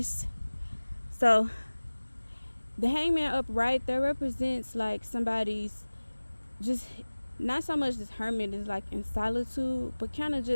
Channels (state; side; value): inverted; both; correlation -1.00